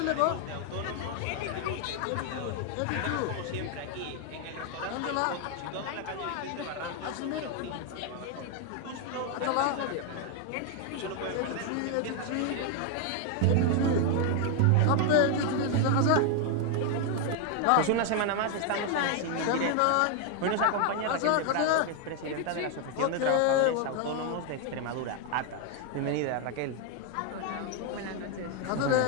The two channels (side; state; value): both; different; correlation 0.01